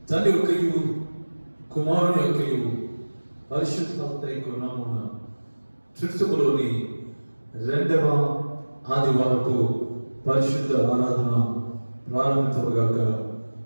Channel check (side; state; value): both; inverted; correlation -1.00